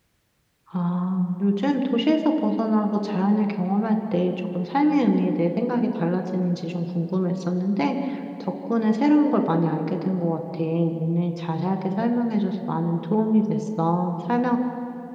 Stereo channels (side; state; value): both; identical; correlation 1.00